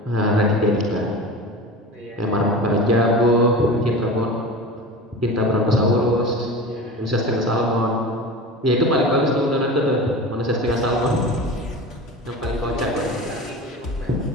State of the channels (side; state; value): both; normal; correlation 0.32